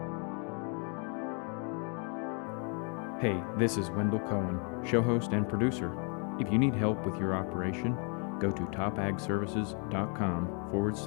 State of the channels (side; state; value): right; quieter; 37.9 dB